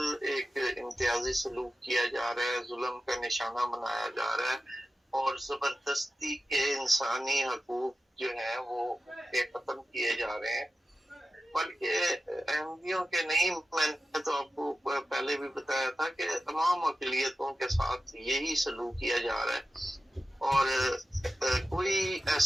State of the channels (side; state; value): both; normal; correlation 0.93